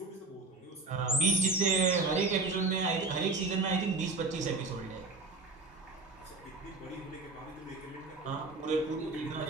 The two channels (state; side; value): quieter; left; 3.7 dB